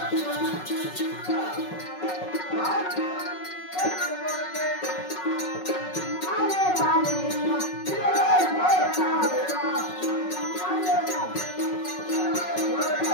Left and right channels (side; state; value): right; late; 5.4 ms